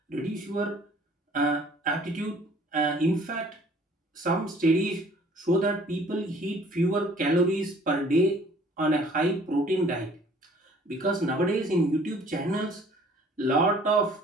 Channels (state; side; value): normal; both; correlation 0.55